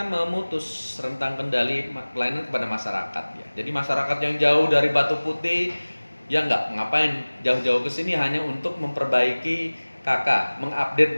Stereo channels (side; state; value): both; inverted; correlation -1.00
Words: memutus rentang kendali pelayanan kepada masyarakat ya. Jadi masyarakat yang jauh dari Batu Putih ya ngapain jauh-jauh ke sini hanya untuk memperbaiki KK, mengupdate